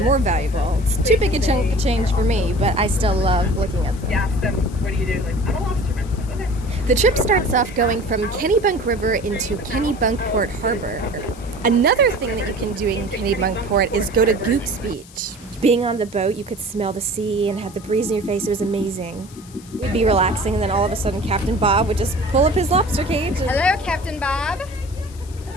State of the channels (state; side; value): noise; left; hiss, 22 dB below the sound